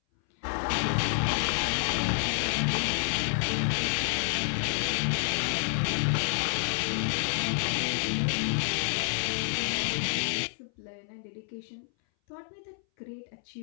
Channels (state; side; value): silent; right; 58 dB below the other